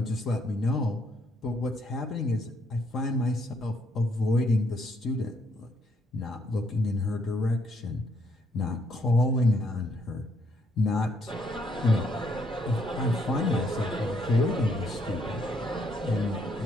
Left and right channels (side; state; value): both; normal; correlation 0.72